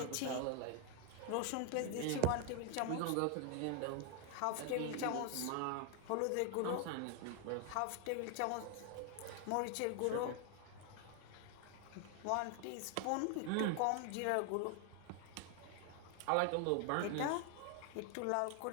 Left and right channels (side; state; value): both; different; correlation 0.00